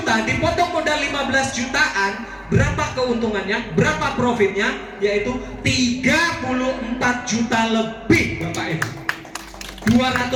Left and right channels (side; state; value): both; identical; correlation 1.00